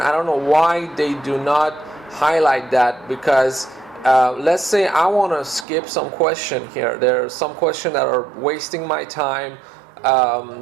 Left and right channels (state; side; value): drops out; left; at 5.7 s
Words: don't know why they do not highlight that, because let's say I want to skip some question here. There are some questions that are wasting my time.